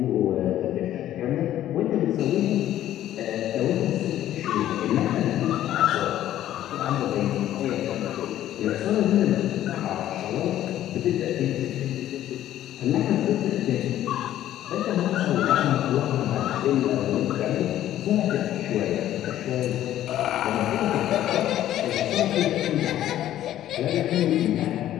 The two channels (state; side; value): quieter; right; 12.6 dB